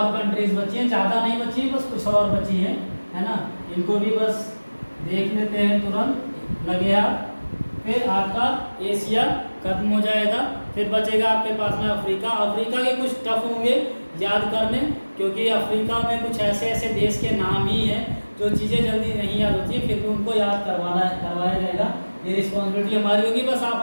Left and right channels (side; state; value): both; inverted; correlation -1.00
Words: कंट्रीज बची हैं, ज़्यादा नहीं बची, बस कुछ और बची हैं, है ना। इनको भी बस देख लेते हैं, तुरंत लगे आप। फिर आपका एशिया खत्म हो जाएगा, फिर बचेगा आपके पास में अफ्रीका। अफ्रीका के कुछ टफ होंगे याद करने, क्योंकि अफ्रीका में कुछ ऐसे देश के नाम ही हैं जो चीज़ें जल्दी नहीं याद होती, फिर भी उनको याद करवाया जाएगा। ये रिस्पॉन्सिबिलिटी हमारी होगी, बस